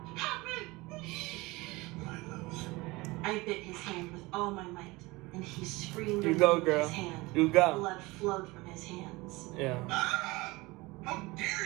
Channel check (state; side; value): quieter; left; 22.3 dB